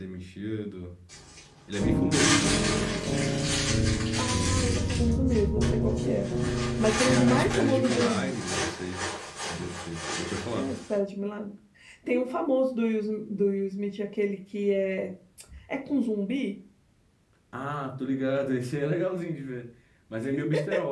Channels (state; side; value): identical; both; correlation 1.00